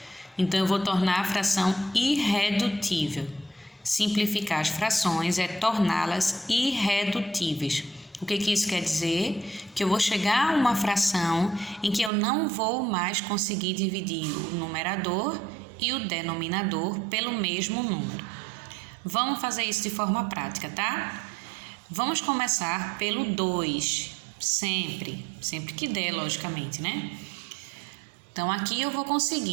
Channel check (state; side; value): drops out; left; at 12.1 s